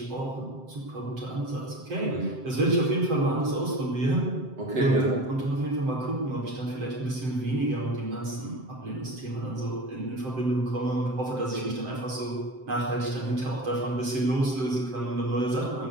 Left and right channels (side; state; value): left; late; 7.7 ms